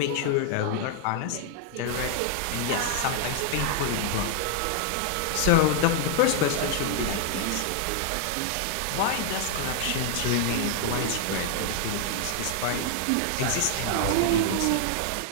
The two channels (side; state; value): both; different; correlation 0.00